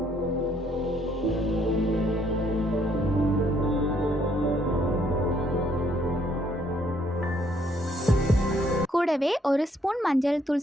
கூடவே ஒரு ஸ்பூன் மஞ்சள்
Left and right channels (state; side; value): normal; both; correlation 0.68